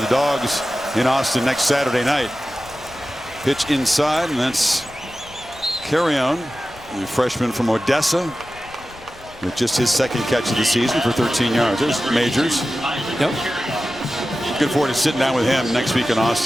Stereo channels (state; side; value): noise; left; rumble, 22 dB below the sound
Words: the Dogs in Austin next Saturday night. Pitch inside, and that's Carrion, the freshman from Odessa, with just his second catch of the season for 13 yards. There's Majors. Yep. Looking forward to sitting down with him next week in